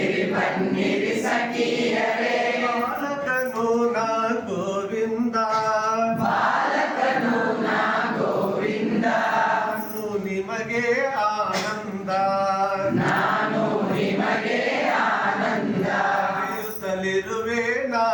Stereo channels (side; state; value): both; identical; correlation 1.00